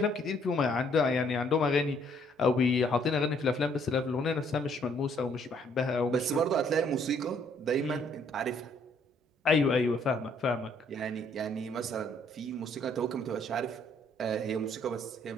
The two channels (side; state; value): both; normal; correlation 0.65